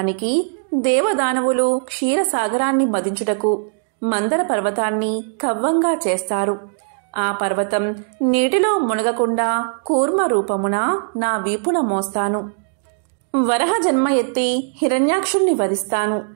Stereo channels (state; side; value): silent; left; digital silence